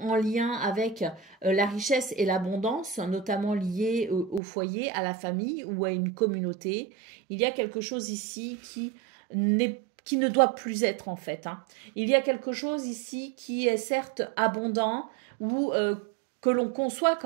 lien avec la richesse et l'abondance, notamment liée au foyer, à la famille ou à une communauté. Il y a quelque chose ici qui ne doit plus être en fait. Hein. Il y a quelque chose ici qui est certes abondant ou que l'on conçoit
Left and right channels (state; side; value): drops out; left; at 4.4 s